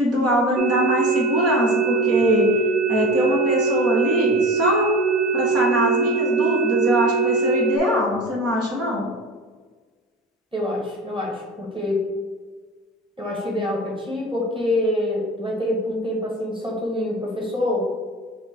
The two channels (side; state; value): both; normal; correlation 0.30